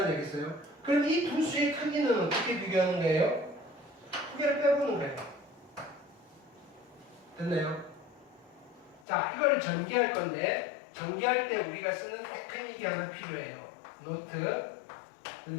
알겠어요? 그럼 이 두 수의 크기는 어떻게 비교하는 거예요? 크기를 빼보는 거예요. 됐나요? 자, 이걸 전개할 건데 전개할 때 우리가 쓰는 테크닉이 하나 필요해요. 노트.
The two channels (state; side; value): drops out; right; at 9.0 s